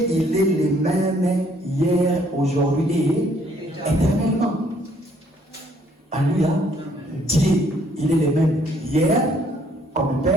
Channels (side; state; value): both; normal; correlation 0.65